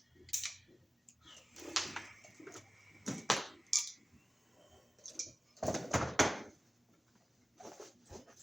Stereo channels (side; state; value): both; normal; correlation 0.96